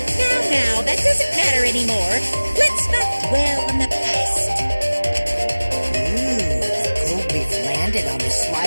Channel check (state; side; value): inverted; both; correlation -1.00